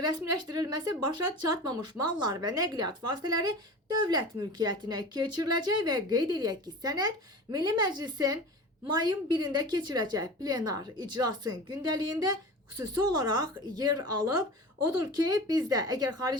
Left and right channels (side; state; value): both; normal; correlation 0.34